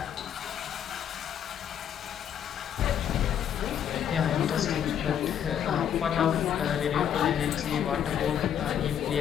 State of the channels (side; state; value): right; quieter; 9.2 dB